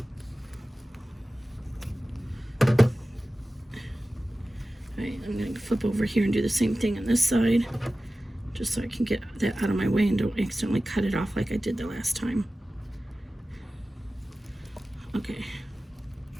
Alright, I'm going to flip over here and do the same thing on this side, just so I can get that out of my way and don't accidentally cut it off like I did the last time. Okay.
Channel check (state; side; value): normal; both; correlation 0.95